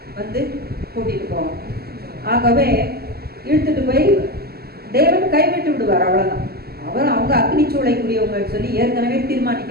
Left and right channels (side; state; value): left; late; 0.46 ms